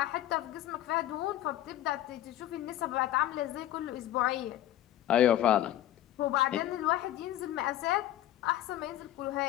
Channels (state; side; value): quieter; right; 13.1 dB